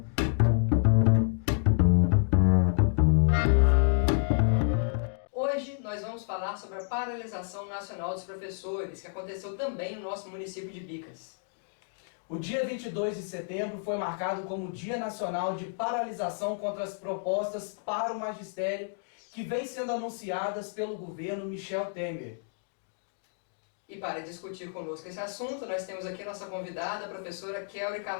Hoje nós vamos falar sobre a paralisação nacional dos professores, que aconteceu também no nosso município de Bicas. O dia 22 de setembro foi marcado como Dia Nacional de Paralisação contra as propostas para o magistério que vem sendo anunciadas pelo governo Michel Temer. E para discutir conosco esse assunto, nós temos aqui a nossa convidada, a professora Kelly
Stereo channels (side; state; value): right; silent; digital silence